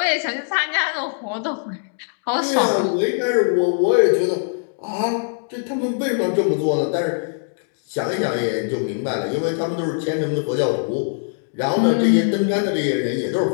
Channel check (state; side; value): silent; right; digital silence